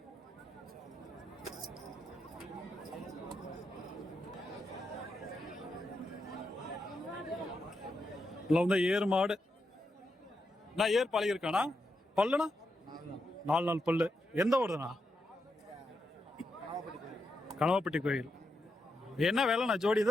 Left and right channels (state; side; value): normal; both; correlation 0.84